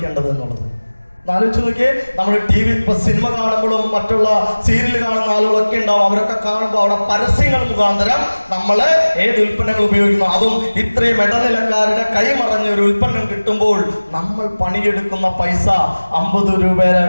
എന്നുള്ളത് ആലോചിച്ച് നോക്കിയേ. നമ്മൾ TV സിനിമ കാണുമ്പോഴും മറ്റുള്ള സീരിയൽ കാണുന്ന ആളുകളൊക്കെ ഉണ്ടാവും. അവരൊക്കെ കാണുമ്പോൾ അവിടെ പരസ്യങ്ങൾ മുഖാന്തരം നമ്മൾ ഏത് ഉൽപ്പന്നങ്ങൾ ഉപയോഗിക്കുന്നു. അതും ഇത്രയും ഇടനിലക്കാരുടെ കൈമറഞ്ഞ ഒരു ഉൽപ്പന്നം കിട്ടുമ്പോൾ നമ്മൾ പണിയെടുക്കുന്ന പൈസ 50 രൂപയുടെ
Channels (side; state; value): both; inverted; correlation -1.00